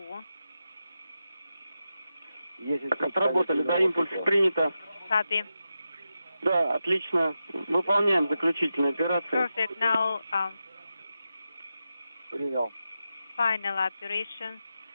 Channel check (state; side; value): inverted; both; correlation -0.90